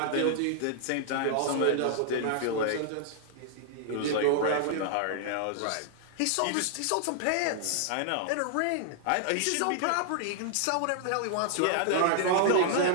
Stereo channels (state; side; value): different; both; correlation -0.01